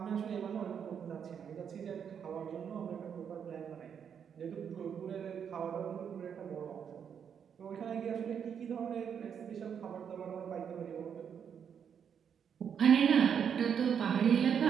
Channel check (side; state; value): left; quieter; 7.7 dB